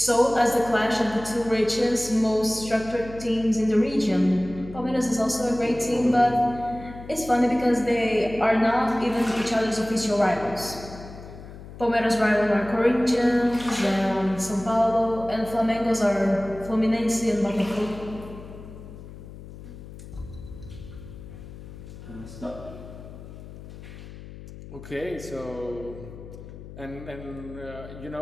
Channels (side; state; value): left; noise; hum, 15 dB below the sound